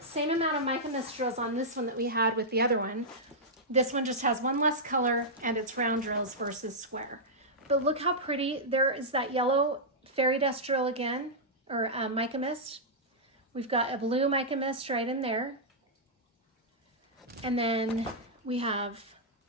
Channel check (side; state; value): both; normal; correlation -0.09